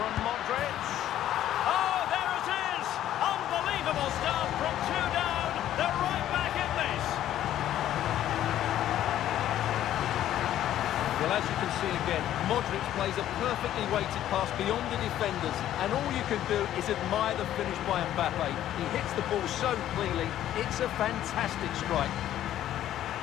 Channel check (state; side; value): quieter; right; 12.1 dB